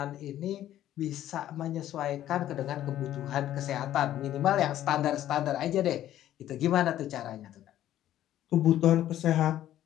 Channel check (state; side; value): quieter; right; 12.5 dB